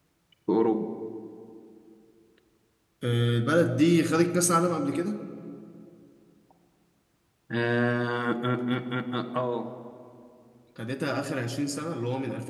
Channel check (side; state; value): both; identical; correlation 1.00